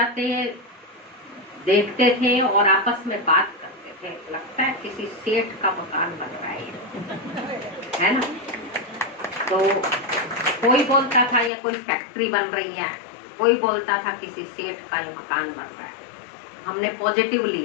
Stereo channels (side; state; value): right; drops out; at 11.5 s